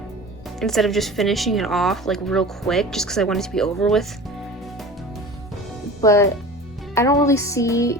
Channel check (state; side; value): normal; both; correlation 0.37